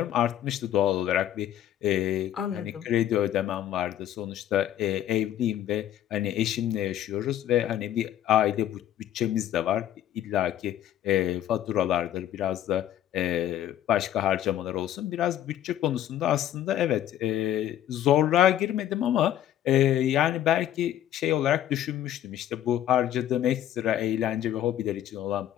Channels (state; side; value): quieter; right; 11.7 dB